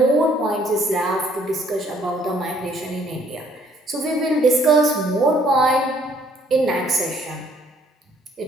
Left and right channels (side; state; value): both; normal; correlation 0.63